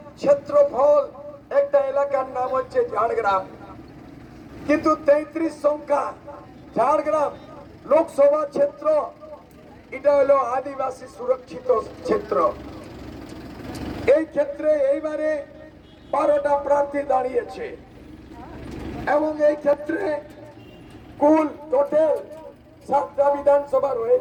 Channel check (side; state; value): both; identical; correlation 1.00